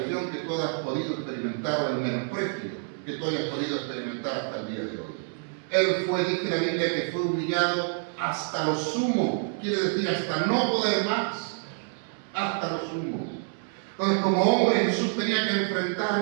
que tú hayas podido experimentar o el menosprecio que tú hayas podido experimentar hasta el día de hoy. Él fue, dice la Biblia, que fue humillado hasta lo sumo, quiere decir hasta no poder más, hasta lo sumo. Entonces, como hombre, Jesús tenía que enfrentar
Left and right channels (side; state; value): left; silent; 60 dB below the other